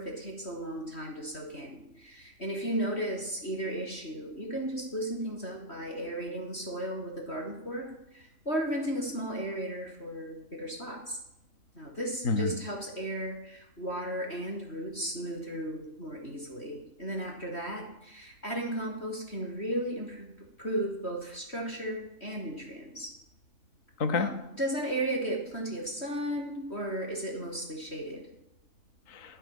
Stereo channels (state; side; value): late; right; 3.1 ms